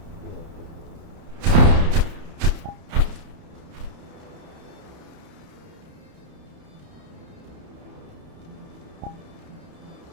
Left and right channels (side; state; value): left; late; 31 ms